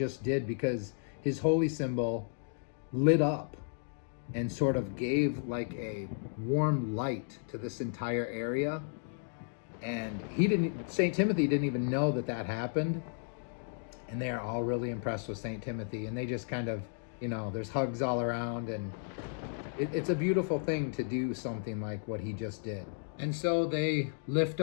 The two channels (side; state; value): right; silent; digital silence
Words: did, because his holy symbol lit up and sort of gave like a warm light to this entire area. And St. Timothy didn't even know that that happened. And they are all really impressed with St. Timothy. And they just kind of, there's hugs all around. And it's a beautiful thing to do something like what he just did. And so they lift